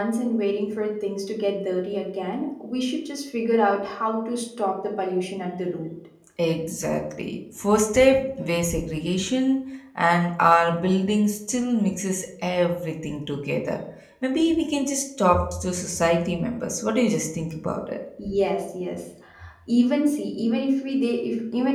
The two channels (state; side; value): identical; both; correlation 1.00